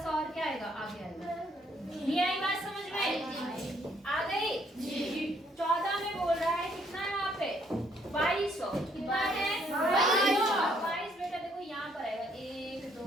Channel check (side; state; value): both; normal; correlation 0.67